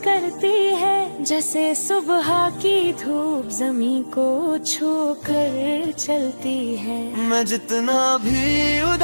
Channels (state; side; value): inverted; both; correlation -1.00